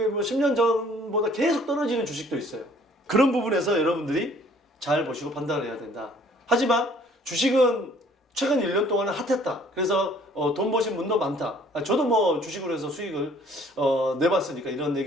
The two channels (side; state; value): both; normal; correlation 0.57